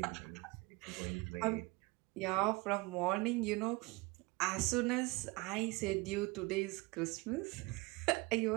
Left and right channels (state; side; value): quieter; left; 24.4 dB